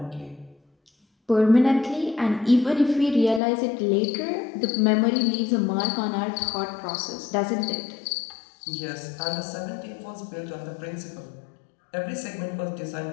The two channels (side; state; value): right; drops out; at 3.4 s